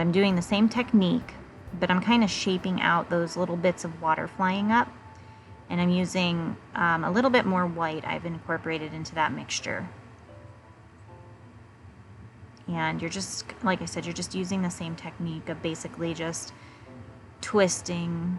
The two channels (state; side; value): identical; both; correlation 1.00